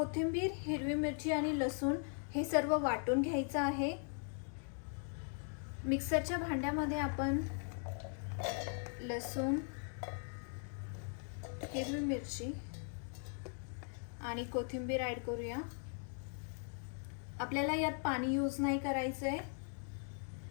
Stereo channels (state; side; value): silent; right; 51 dB below the other